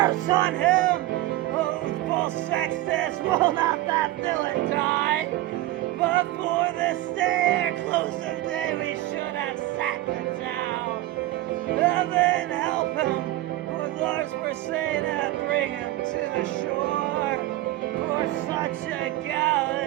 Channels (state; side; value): quieter; left; 16.4 dB